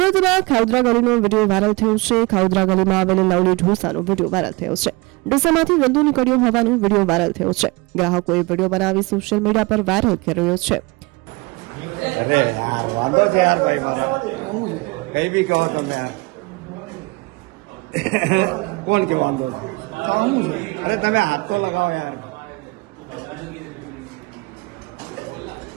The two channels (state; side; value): quieter; left; 25.1 dB